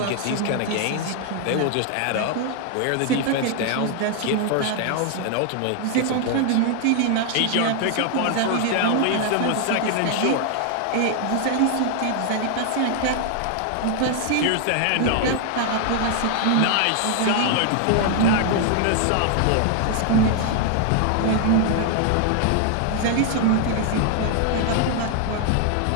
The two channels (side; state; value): both; different; correlation 0.00